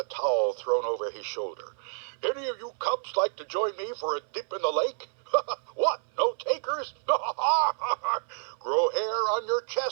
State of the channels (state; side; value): silent; left; 59 dB below the other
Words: towel thrown over his shoulder. "Any of you cubs like to join me for a dip in the lake? What, no takers? Grow hair on your